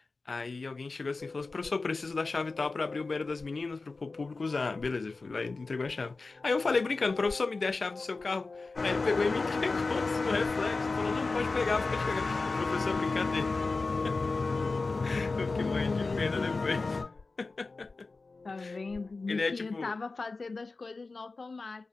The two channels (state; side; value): quieter; right; 3.7 dB